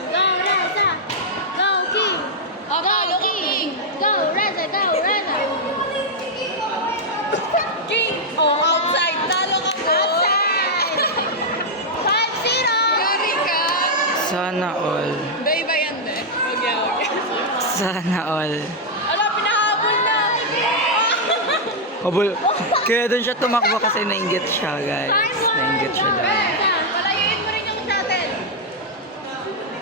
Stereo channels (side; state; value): both; normal; correlation -0.03